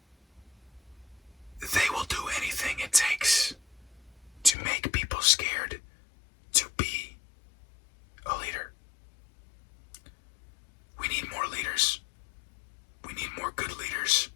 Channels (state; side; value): drops out; right; at 4.5 s